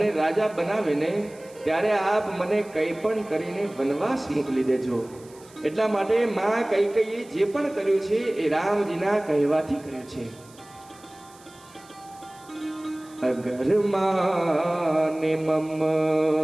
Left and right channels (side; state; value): right; noise; hiss, 25 dB below the sound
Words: રાજા બનાવે ને ત્યારે આપ મને કંઈ પણ કરીને વનવાસ મોકલી દેજો. એટલા માટે માં કૈકેયીએ જે પણ કર્યું છે એ રામજીના કહેવાથી કર્યું છે. અગર માને